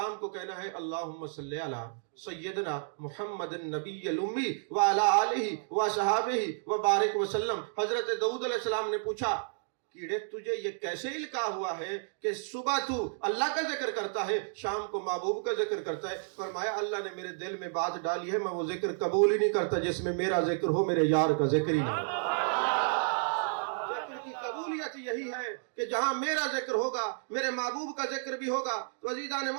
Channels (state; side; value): silent; left; digital silence